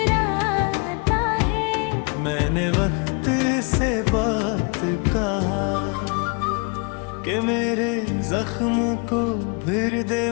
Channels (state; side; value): quieter; right; 33.7 dB